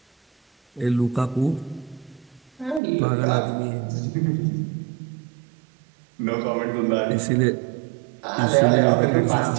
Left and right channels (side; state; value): left; drops out; at 2.8 s